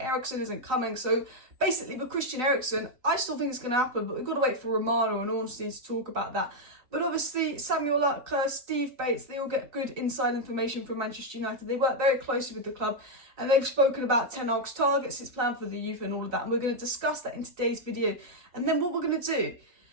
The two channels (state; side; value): late; left; 3.9 ms